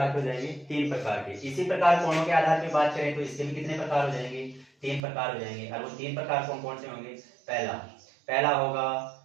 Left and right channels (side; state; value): left; drops out; at 5.0 s